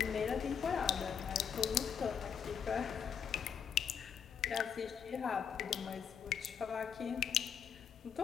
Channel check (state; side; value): quieter; right; 7.6 dB